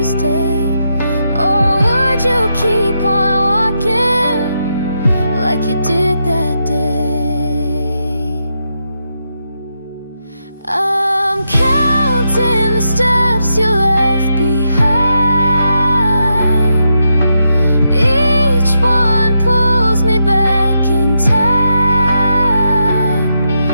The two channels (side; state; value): both; inverted; correlation -0.83